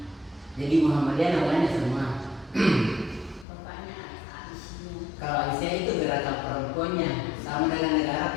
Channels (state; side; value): drops out; right; at 3.5 s